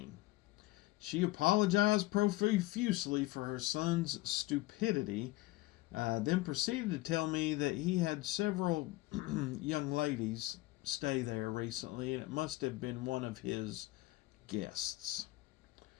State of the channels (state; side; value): quieter; right; 19.1 dB